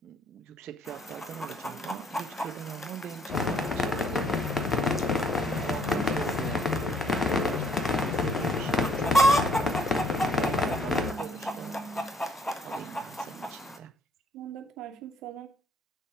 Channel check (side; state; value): both; normal; correlation 0.64